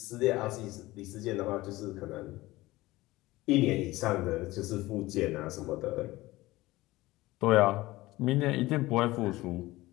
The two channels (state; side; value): quieter; right; 18.8 dB